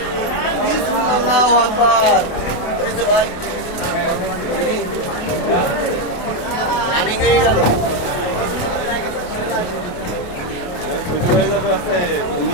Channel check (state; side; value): late; right; 28 ms